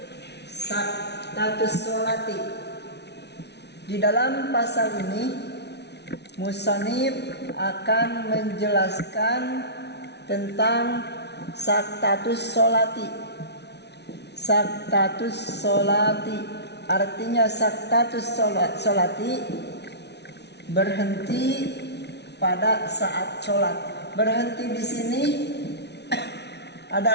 saktatus sholati. Di dalam pasal ini musannif akan menjelaskan tentang saktatus sholati. Saktatus sholati artinya saktatus sholati berhenti pada saat sholat. Berhenti di sini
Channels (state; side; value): late; right; 0.50 ms